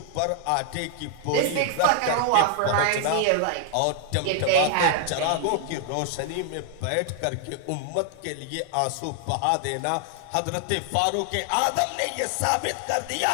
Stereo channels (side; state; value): both; different; correlation 0.00